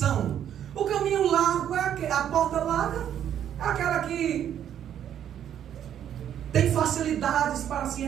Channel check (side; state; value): left; quieter; 10.0 dB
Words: O caminho largo é a porta larga, é aquela que tem facilidades para se